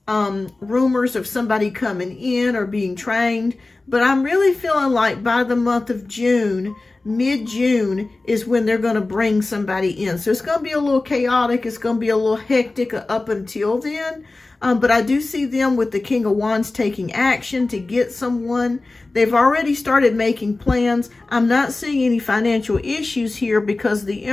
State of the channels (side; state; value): right; quieter; 3.3 dB